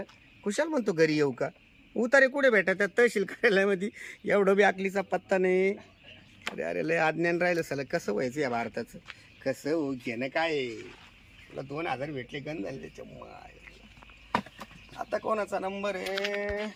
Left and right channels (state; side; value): identical; both; correlation 1.00